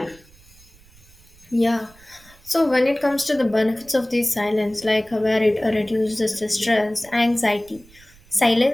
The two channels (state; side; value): noise; right; rumble, 26 dB below the sound